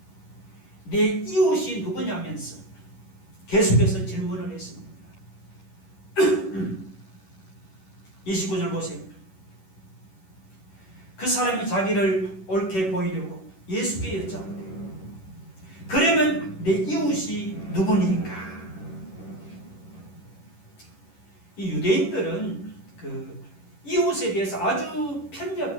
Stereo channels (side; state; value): right; late; 11 ms